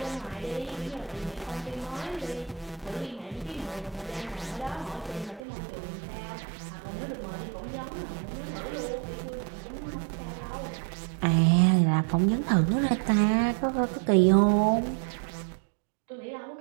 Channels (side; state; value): left; drops out; at 5.4 s